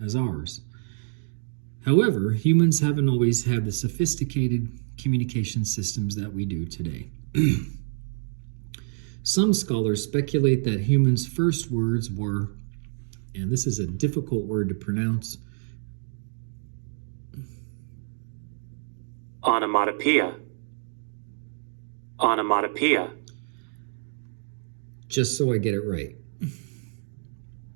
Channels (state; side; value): silent; left; digital silence